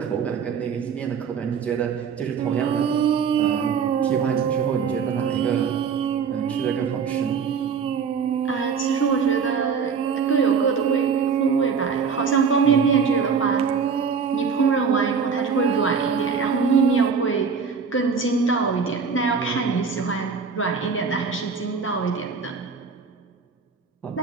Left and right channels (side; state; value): left; quieter; 6.0 dB